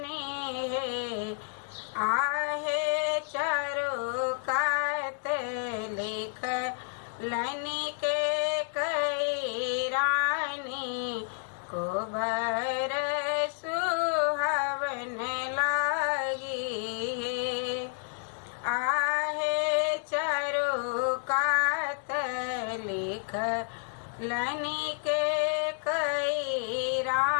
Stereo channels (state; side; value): silent; right; 58 dB below the other